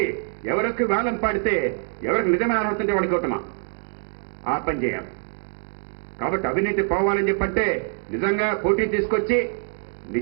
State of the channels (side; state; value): left; silent; digital silence